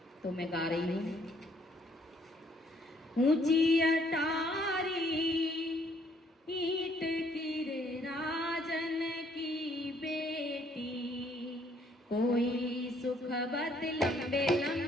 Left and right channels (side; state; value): both; normal; correlation 0.65